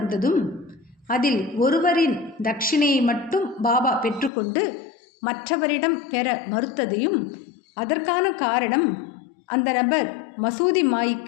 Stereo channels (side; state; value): right; drops out; at 4.3 s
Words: அதில் ஒருவரின் தட்சிணையை மட்டும் பாபா பெற்றுக்கொண்டு மற்றவரிடம் பெற மறுத்ததையும், அதற்கான காரணம் அந்த நபர் மசூதி